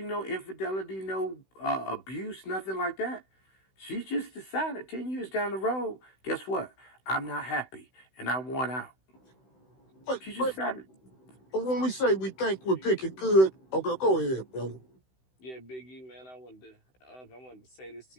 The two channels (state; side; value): late; right; 16 ms